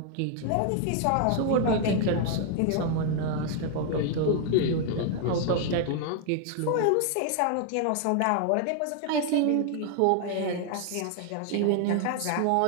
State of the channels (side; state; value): both; different; correlation 0.00